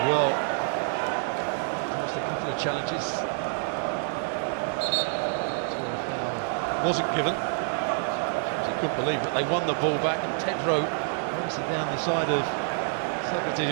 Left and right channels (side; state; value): left; silent; 60 dB below the other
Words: well. Lost a couple of challenges. Wasn't given. I couldn't believe it. They won the ball back, and Pedro racing down the side of Socrates,